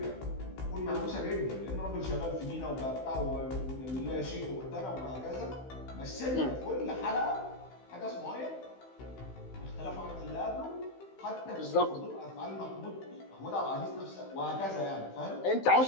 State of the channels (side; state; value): right; late; 16 ms